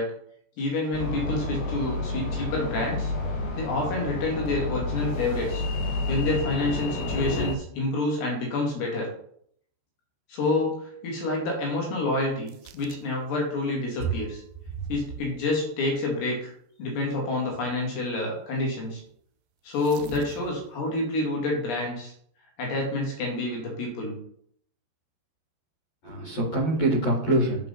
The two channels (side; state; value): right; late; 14 ms